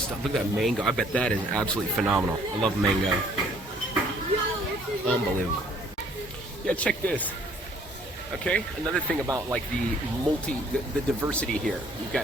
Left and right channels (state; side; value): normal; both; correlation 0.60